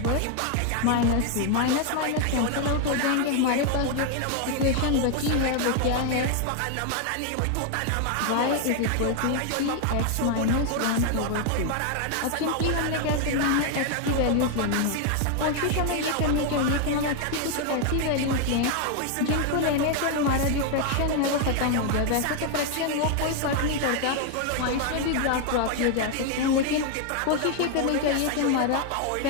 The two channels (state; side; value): different; both; correlation 0.01